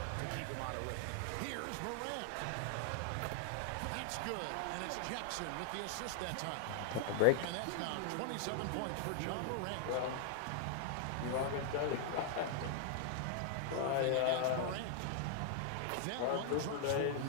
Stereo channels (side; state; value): both; different; correlation 0.00